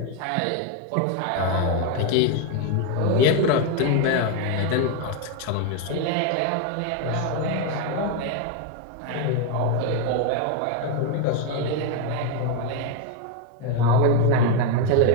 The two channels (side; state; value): both; different; correlation 0.01